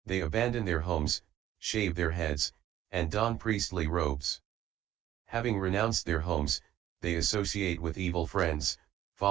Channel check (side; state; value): left; quieter; 12.6 dB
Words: They abandon their homes, shave their heads, and don priestly robes. Having renounced their homes, they associate with evil friends,